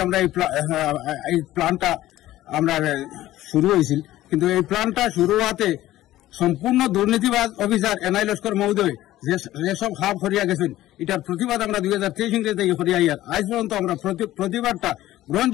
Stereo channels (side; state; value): right; quieter; 15.0 dB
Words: আমরা এই প্ল্যানটা আমরা শুরু হয়েছিল। কিন্তু এই প্ল্যানটা শুরু হওয়াতে সম্পূর্ণ দুর্নীতিবাজ অফিসার এনআই লস্কর মহোদয় যেসব হাব হরিয়া গেছেন, এটার প্রতিবাদ আমরা 2023 থেকে হরিয়া আজ পর্যন্ত আমরা প্রতিবাদটা